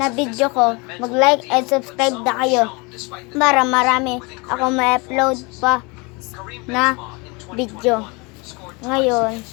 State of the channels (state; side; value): quieter; right; 28.3 dB